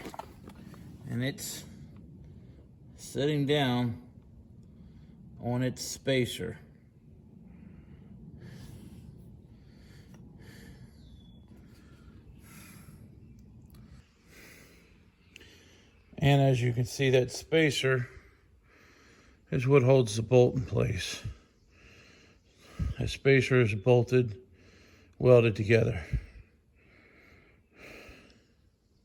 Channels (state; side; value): identical; both; correlation 1.00